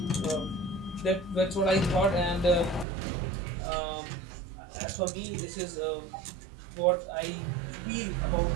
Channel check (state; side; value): drops out; left; at 2.9 s